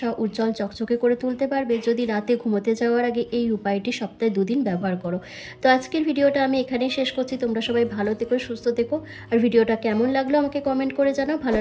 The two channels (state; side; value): identical; both; correlation 1.00